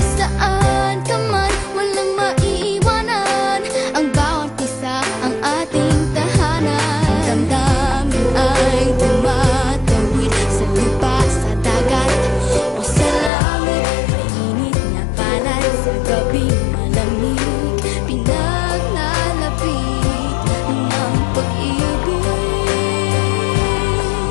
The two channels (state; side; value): drops out; right; at 13.3 s